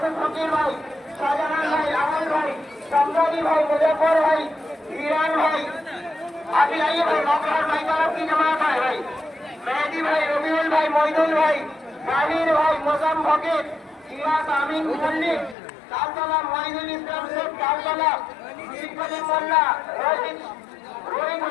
ফকির ভাই, শাহজাহান ভাই, আমল ভাই, সম্রানী ভাই, মুজফর ভাই, ইরান ভাই, আদিলাই ভাই, মকর ভাই, তারা কি জমায়েত হয় ভাই, মেহেদি ভাই, রবিউল ভাই, মইদুল ভাই, জাহির ভাই, মোজাম ফকির, ইরাজ আমিন মল্লিক, তালতলা মহিদুল ইসলাম শেখ, তালতলা শিবকালী মোল্লা, রোহিত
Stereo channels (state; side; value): drops out; right; at 15.6 s